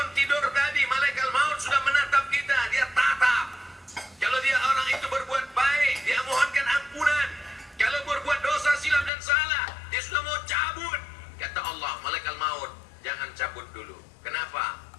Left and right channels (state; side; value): drops out; right; at 9.1 s